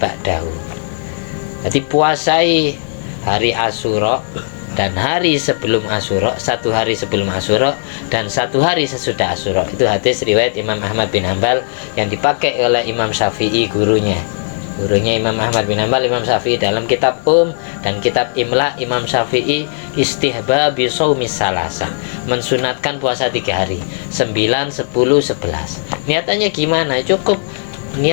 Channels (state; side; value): silent; right; digital silence